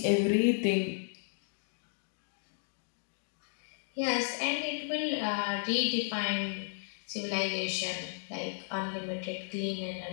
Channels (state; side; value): silent; right; digital silence